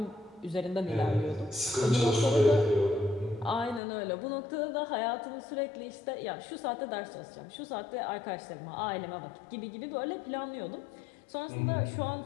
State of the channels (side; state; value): right; drops out; at 3.8 s